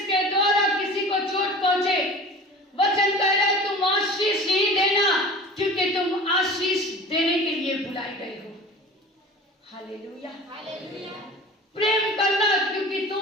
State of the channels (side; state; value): both; normal; correlation 0.39